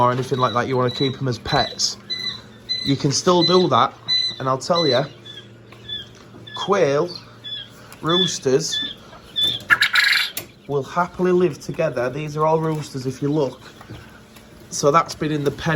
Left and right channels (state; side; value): identical; both; correlation 1.00